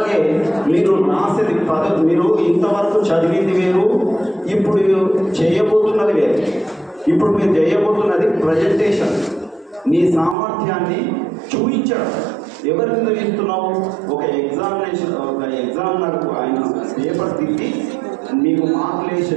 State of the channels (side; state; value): left; drops out; at 10.4 s